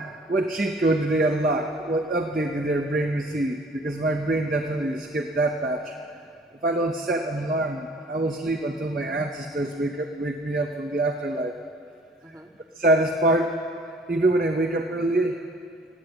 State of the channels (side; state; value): both; normal; correlation 0.54